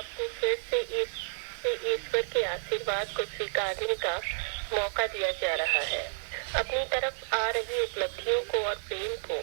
फिर से ईश्वर के आशीर्वाद को स्वीकारने का मौका दिया जा रहा है। अपनी तरफ आ रही उपलब्धियों को और प्रेम को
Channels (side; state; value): left; silent; 57 dB below the other